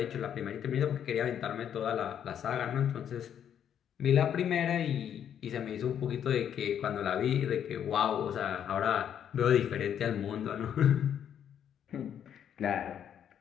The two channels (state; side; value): quieter; right; 9.2 dB